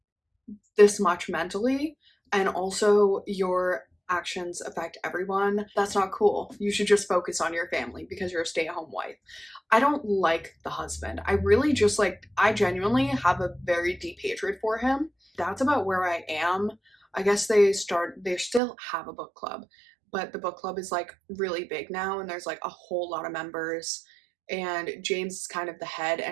this much mentally, and also your actions affect everyone. That's not cool. You should just focus on your family because you're a stay-at-home wife. I don't like the husband. I really just like, I genuinely have a very deep hatred for him. That's about where I am. I guess they still have a book club, but the book club is like really big now and there's like a whole lot of members, and James is kind of the head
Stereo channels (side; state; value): left; drops out; at 18.6 s